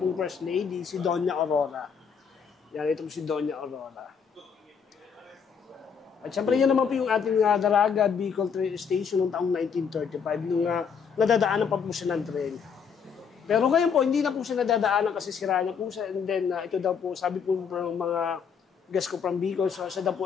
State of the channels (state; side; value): quieter; right; 6.6 dB